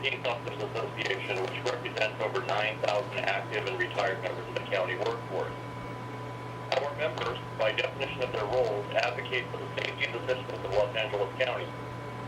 Peace Officers Association, which represents over 9,000 active and retired members of the county workforce. Our members, by definition of their roles, advocate for the safety and the citizens of Los Angeles County.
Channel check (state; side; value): identical; both; correlation 1.00